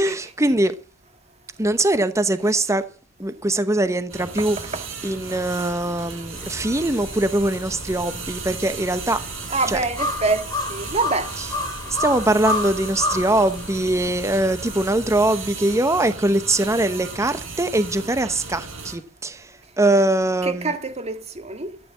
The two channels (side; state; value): both; normal; correlation 0.61